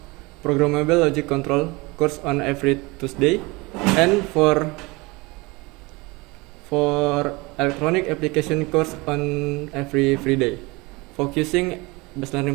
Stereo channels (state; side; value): quieter; left; 24.5 dB